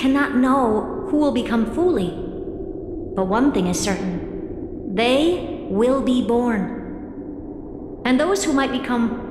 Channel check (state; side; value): identical; both; correlation 1.00